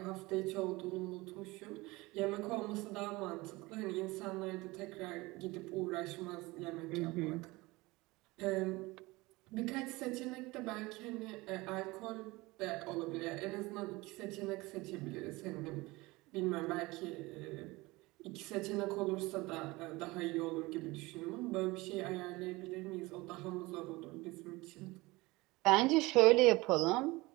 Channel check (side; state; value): left; quieter; 21.9 dB